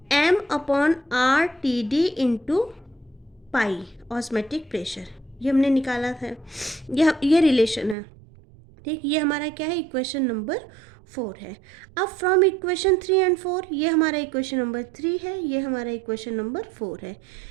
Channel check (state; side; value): drops out; left; at 8.0 s